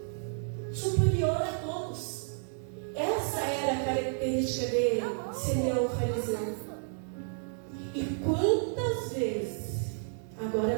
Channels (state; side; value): silent; left; digital silence